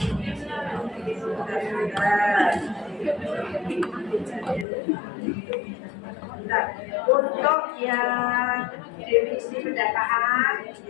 untuk yang definisi pendataan,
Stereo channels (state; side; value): drops out; right; at 4.7 s